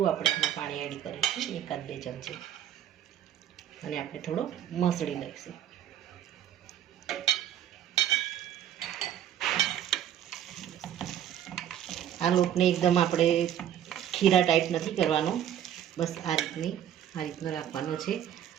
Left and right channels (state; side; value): quieter; left; 10.5 dB